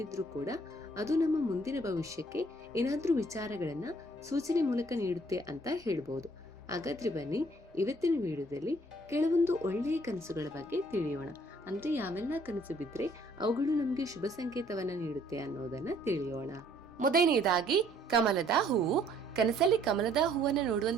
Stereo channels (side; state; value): both; normal; correlation 0.61